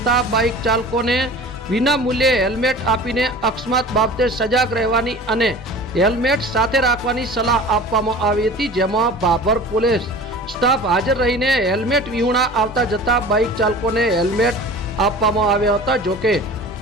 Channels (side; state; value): both; normal; correlation 0.40